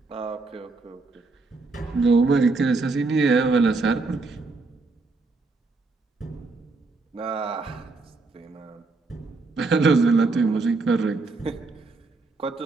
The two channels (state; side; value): quieter; left; 3.7 dB